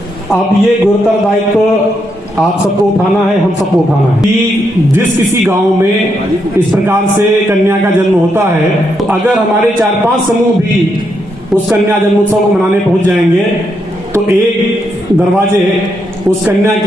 अब ये गुरुतर दायित्व आप सबको उठाना है, हम सबको उठाना है कि जिस किसी गांव में इस प्रकार से कन्या का जन्म होता है, तो अगर हमारे 4-5 समूह भी उस कन्या जन्मोत्सव को मनाने पहुंच जाएंगे तो एक दरवाजे उस कन्या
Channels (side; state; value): both; normal; correlation 0.80